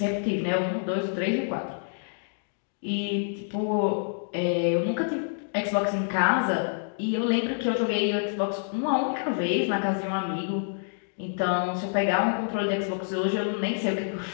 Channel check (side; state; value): right; silent; digital silence